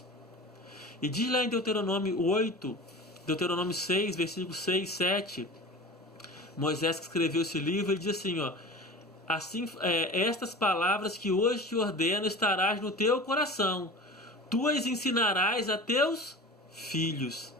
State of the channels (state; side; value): normal; both; correlation 0.35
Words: E diz lá em Deuteronômio 8, Deuteronômio 6, versículos 6 e 7, Moisés que escreveu esse livro, ele diz assim, assim, estas palavras que hoje te ordeno estarás no teu coração, tu as ensinarás a teus filhos.